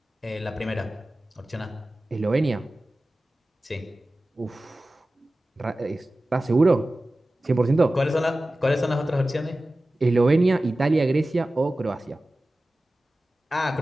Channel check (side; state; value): both; normal; correlation 0.96